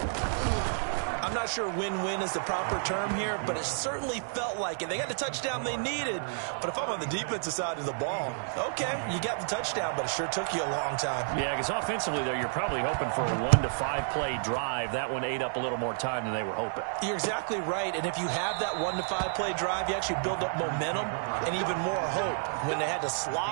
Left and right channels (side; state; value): left; silent; digital silence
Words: I'm not sure win-win is the proper term here, but it certainly felt like it. They got the touchdown they needed, but if I'm on the defensive side of the ball, okay, you got the touchdown, but it sure took you a long time. Yeah, because offensively, though, you're probably hoping for a 1 to 5 play drive. That one ate up a little more time than they were hoping. You're exactly right, and if you have that 1 to 5 play drive, you actually build up momentum and even more hope. When they had to